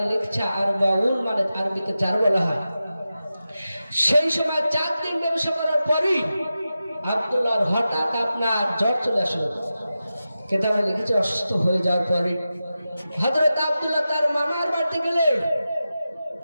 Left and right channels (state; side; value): inverted; both; correlation -0.92